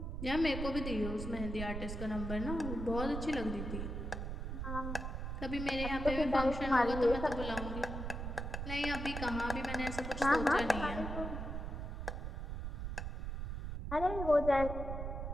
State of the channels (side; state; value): right; noise; rumble, 4 dB below the sound